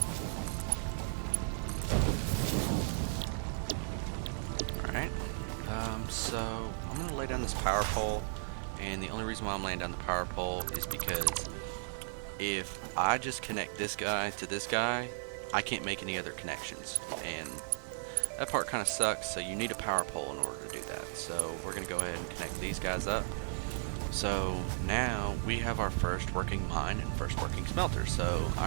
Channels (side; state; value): left; silent; 54 dB below the other